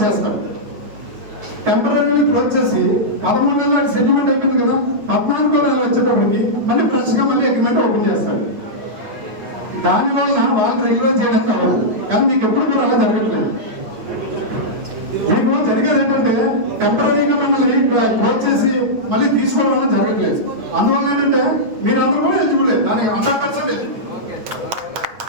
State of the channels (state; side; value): late; left; 9.0 ms